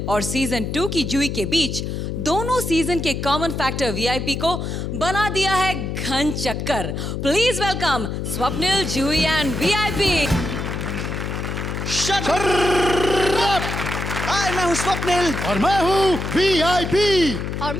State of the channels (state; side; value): noise; left; hum, 4 dB below the sound